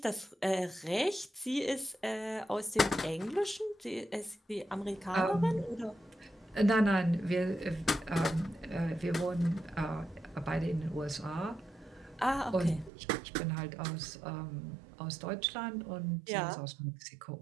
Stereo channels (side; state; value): left; drops out; at 12.9 s